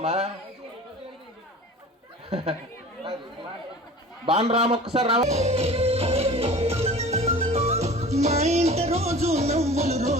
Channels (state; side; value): normal; both; correlation 0.41